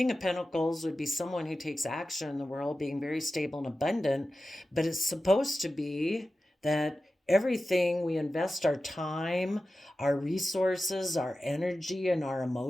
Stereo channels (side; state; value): both; normal; correlation 0.94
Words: of Pentacles would be someone who takes action in the world, being very stable and abundant, but it's supposed to be that everything we invest our time, our resources, our energy, and our